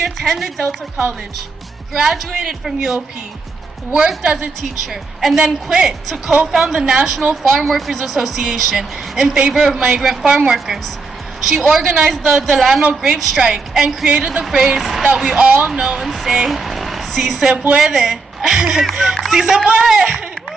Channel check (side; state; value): left; quieter; 4.1 dB